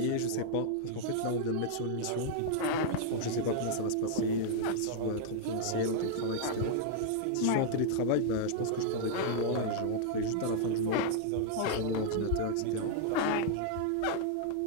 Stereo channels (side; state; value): both; different; correlation -0.01